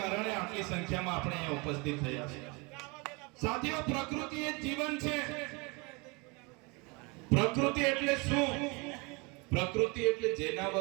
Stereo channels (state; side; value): quieter; left; 28.4 dB